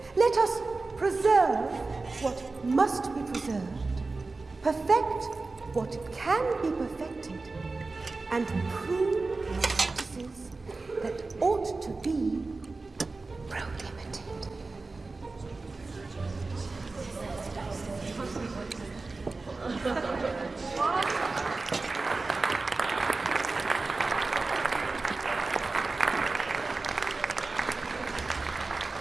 Let us preserve what must be preserved, perfect what can be perfected, and prove practices that ought to be prohibited.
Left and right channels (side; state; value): left; quieter; 3.6 dB